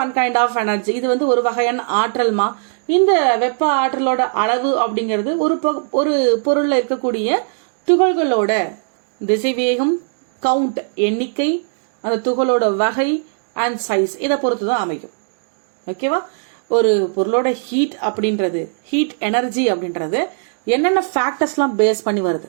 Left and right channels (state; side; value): silent; left; digital silence